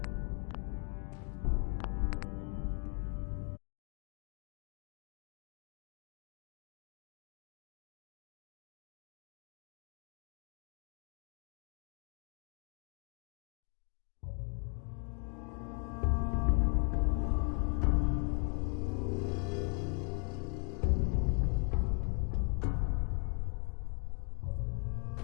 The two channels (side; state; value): right; quieter; 39.8 dB